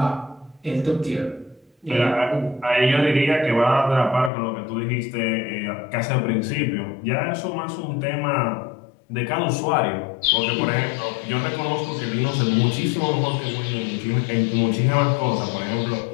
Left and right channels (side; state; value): right; drops out; at 4.3 s